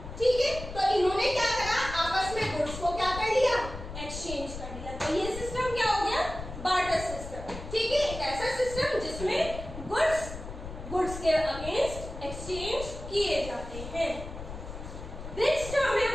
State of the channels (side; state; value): left; noise; rumble, 10 dB below the sound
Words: ठीक है, तो इन्होंने क्या करा? आपस में गुड्स को क्या कर लिया? एक्सचेंज कर लिया। तो ये सिस्टम क्या हो गया? Barter system. ठीक है, एक ऐसा सिस्टम जिसमें गुड्स के अगेंस्ट एक्सचेंज किए जाते हैं। नेक्स्ट टर्म है